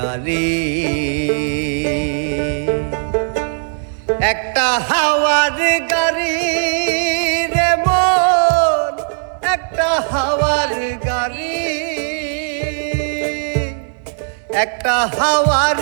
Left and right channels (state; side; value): silent; left; digital silence